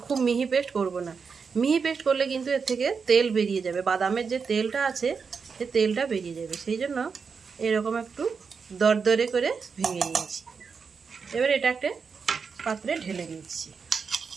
খুব মিহি পেস্ট করব না। মিহি পেস্ট করলে কিন্তু এর থেকে তেল বেরিয়ে যাবে, বাদামের যে তেলটা আছে সে তেলটা বেরিয়ে যাবে, সেই জন্য এরকম একটু দরদরে করে ভেঙে নিয়েছি। এবার এটা একটা পাত্রে ঢেলে দিচ্ছি।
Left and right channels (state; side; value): quieter; left; 5.6 dB